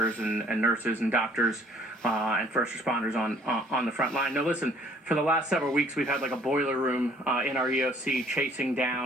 and nurses and doctors and first responders on the front line. No, listen, for the last several weeks, we've had like a boiler room in our EOC chasing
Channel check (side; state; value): both; normal; correlation 0.58